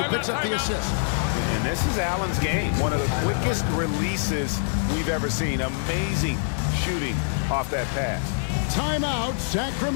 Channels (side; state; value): right; silent; 62 dB below the other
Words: who picks up the assist. And this is Allen's game. One of the quickest releases we've ever seen. Amazing shooting off that pass. Timeout,